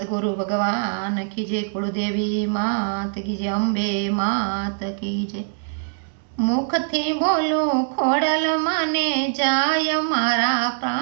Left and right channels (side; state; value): left; silent; digital silence